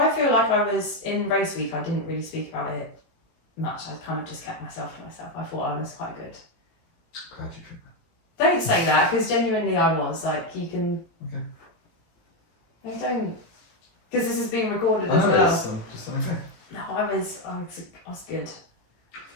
feel like I was, in race week, I didn't really speak about it much. I kind of just kept myself to myself. I thought I was quite good. Glad you think that. Don't say that, because genuinely I was. Like, you can... Okay. I don't... Because this is being recorded I as know it well. is, I'm just okay. No, I was good.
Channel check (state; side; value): late; right; 18 ms